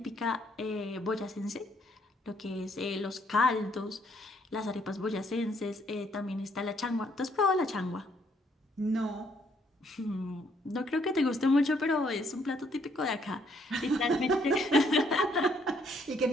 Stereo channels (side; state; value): both; normal; correlation 0.69